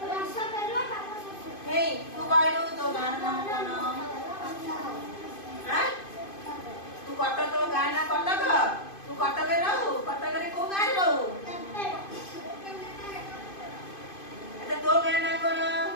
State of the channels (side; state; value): right; late; 2.5 ms